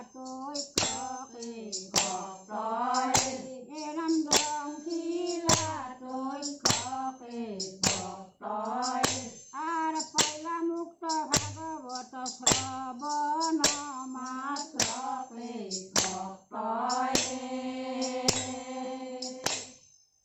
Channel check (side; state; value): both; identical; correlation 1.00